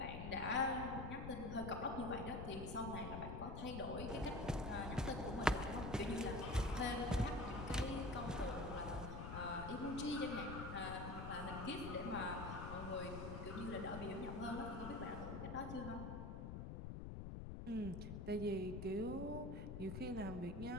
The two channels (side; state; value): left; noise; rumble, 5 dB below the sound